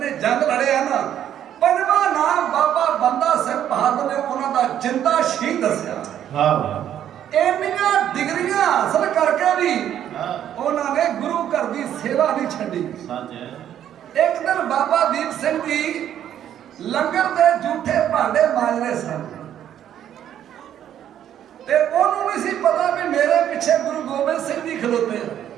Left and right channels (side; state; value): left; quieter; 10.5 dB